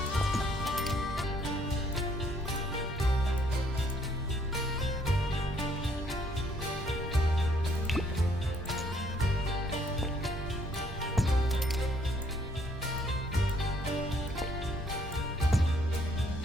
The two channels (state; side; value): normal; both; correlation 0.65